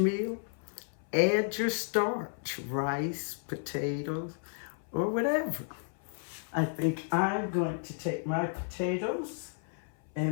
add your starch, rice, potatoes, or whatever. I think I'm going to take my potatoes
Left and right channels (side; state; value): right; silent; 56 dB below the other